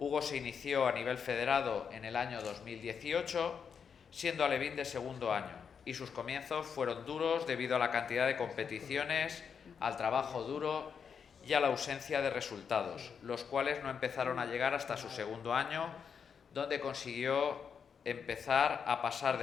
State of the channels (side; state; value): right; quieter; 6.7 dB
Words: se inició a nivel federado en el año 2018, siendo alevín de segundo año, y sus comienzos fueron duros debido a la cantidad de competiciones, al trabajo duro y a la ausencia de resultados, los cuales no empezaron a llegar hasta su segundo año, donde consiguió empezar a pasar